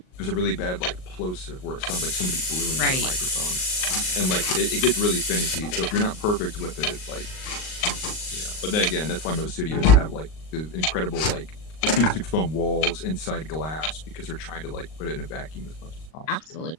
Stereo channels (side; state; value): right; late; 38 ms